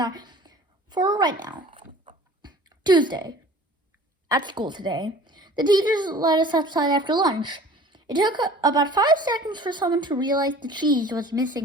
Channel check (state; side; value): normal; both; correlation 0.46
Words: for right now. Tuesday. At school today, the teachers let us outside after lunch. It took about 5 seconds for someone to realize the cheese was